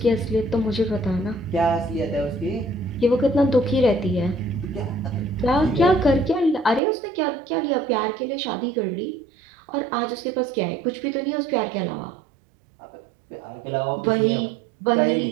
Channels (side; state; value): left; drops out; at 6.8 s